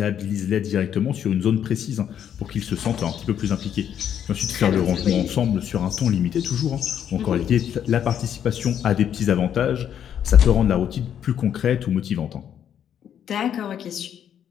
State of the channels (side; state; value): right; quieter; 9.3 dB